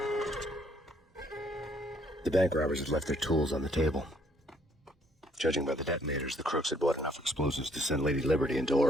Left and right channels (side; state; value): both; normal; correlation 0.65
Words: The bank robbers had left their tools on the table. Judging by the detonators, the crooks had bought enough explosives to send Lady Liberty into